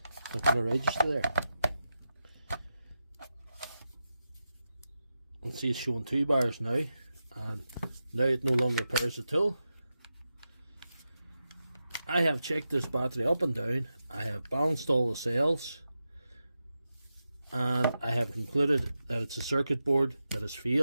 not going to register there. You can see it's showing 2 bars now, and now it no longer powers the tool. I have checked this battery up and down, I have balanced all the cells, and I have concluded that it's a circuit board that has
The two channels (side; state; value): both; inverted; correlation -0.90